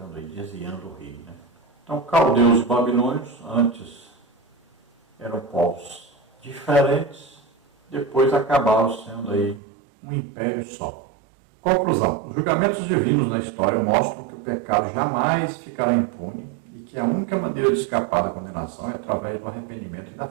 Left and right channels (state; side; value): drops out; left; at 9.6 s